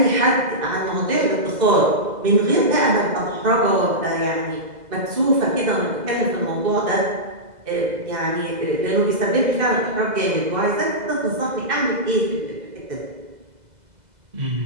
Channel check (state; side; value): late; left; 2.0 ms